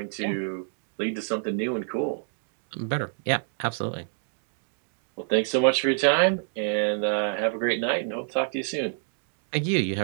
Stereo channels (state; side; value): silent; left; digital silence